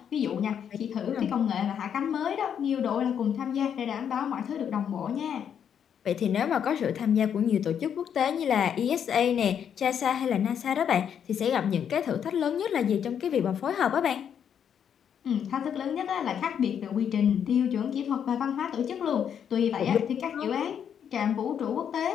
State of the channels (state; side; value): quieter; right; 8.4 dB